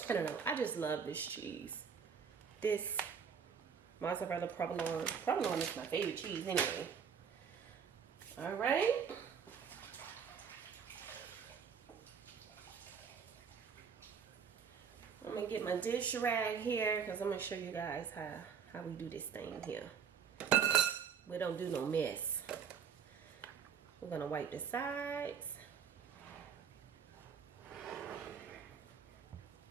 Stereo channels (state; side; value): quieter; left; 7.0 dB